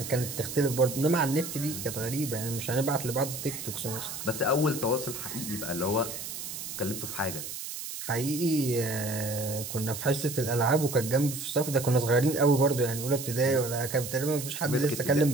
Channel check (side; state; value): right; noise; hiss, 8 dB below the sound